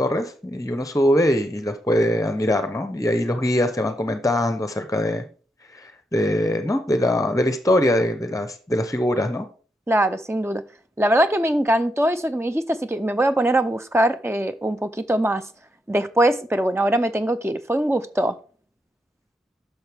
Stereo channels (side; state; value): both; normal; correlation 0.82